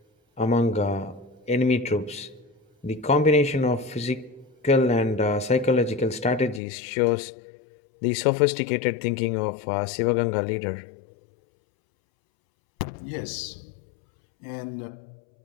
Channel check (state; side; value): drops out; right; at 6.6 s